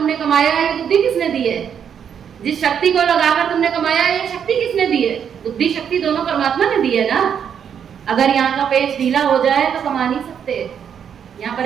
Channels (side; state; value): left; quieter; 8.1 dB